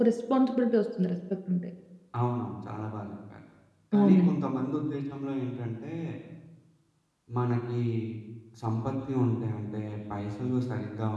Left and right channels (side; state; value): both; identical; correlation 1.00